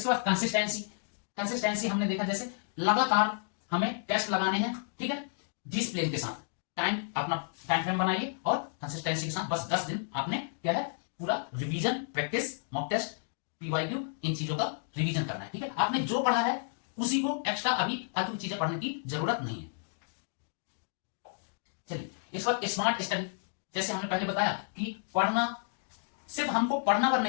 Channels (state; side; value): silent; right; digital silence